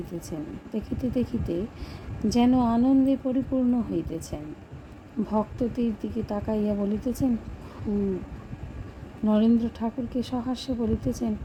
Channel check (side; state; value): both; identical; correlation 1.00